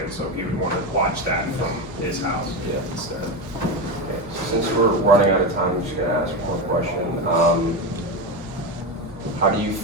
so he would want to watch that from his house instead. Okay, so since we're running out of time, I'm just gonna ask one more question. How do you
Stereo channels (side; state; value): both; normal; correlation 0.16